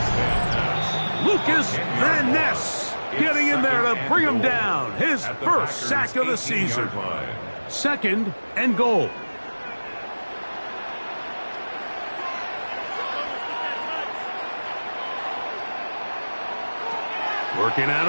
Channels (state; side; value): inverted; both; correlation -1.00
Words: Lucas Van Ness getting in there to bring him down. His first sack of the season. Second and goal. Working out